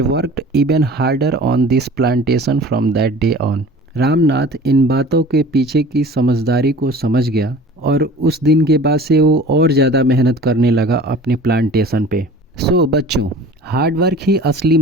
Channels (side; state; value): both; normal; correlation 0.43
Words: worked even harder on this plantation from that day on. Ramnath इन बातों के पीछे की समझदारी को समझ गया और उस दिन के बाद से वो और ज़्यादा मेहनत करने लगा अपने प्लांटेशन पे। सो बच्चों, हार्ड वर्क ही असली